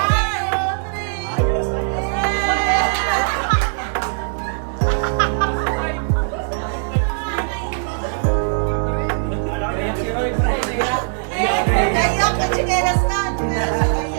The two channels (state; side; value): silent; left; digital silence